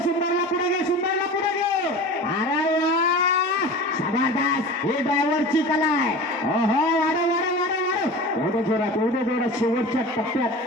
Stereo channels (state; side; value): normal; both; correlation 0.34